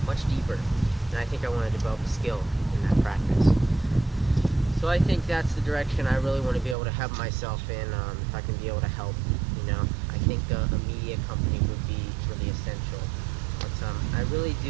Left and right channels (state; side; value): drops out; left; at 6.8 s